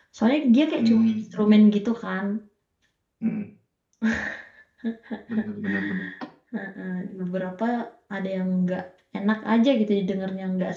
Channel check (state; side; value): identical; both; correlation 1.00